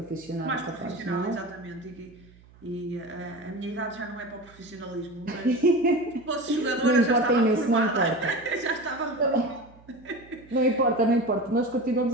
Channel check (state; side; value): noise; right; hum, 25 dB below the sound